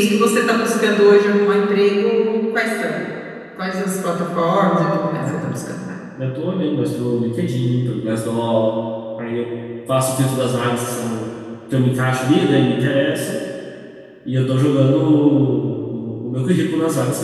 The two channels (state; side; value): identical; both; correlation 1.00